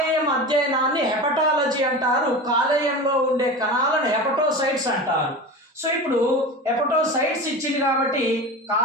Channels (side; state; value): both; normal; correlation 0.29